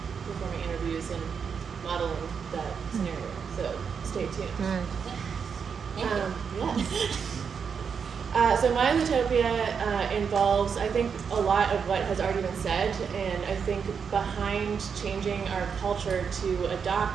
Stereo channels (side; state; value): left; quieter; 6.5 dB